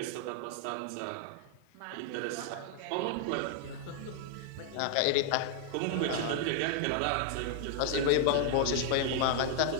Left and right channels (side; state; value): both; different; correlation 0.00